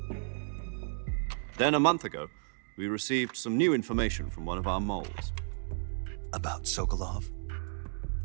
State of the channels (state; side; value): silent; left; digital silence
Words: Then a month ago, we received some new information from one of our moles. About Sokolov?